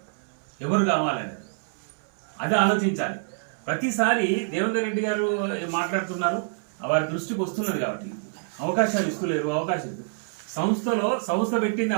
ఎవరు కావాలని. అది ఆలోచించాలి. ప్రతిసారి దేవేందర్ రెడ్డి గారు మాట్లాడుతున్నారు, వారి దృష్టికి వస్తున్నది కాబట్టి అవకాశాలు ఇస్తలేరు. అవకాశాలు సంస్థ పెట్టింది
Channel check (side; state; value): left; silent; 61 dB below the other